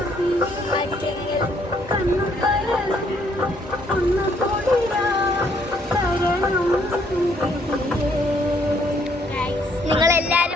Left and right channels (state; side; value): normal; both; correlation 0.67